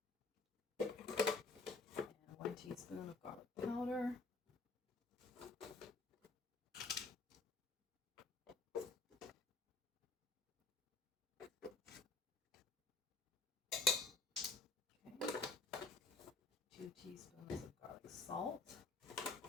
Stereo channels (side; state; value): right; quieter; 3.4 dB